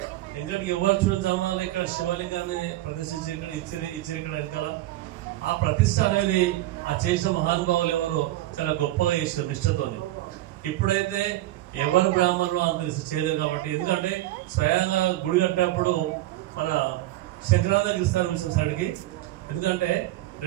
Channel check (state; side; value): quieter; left; 16.1 dB